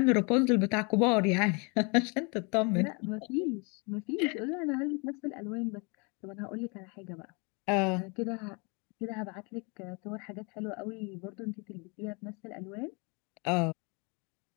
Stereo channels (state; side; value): quieter; right; 31.9 dB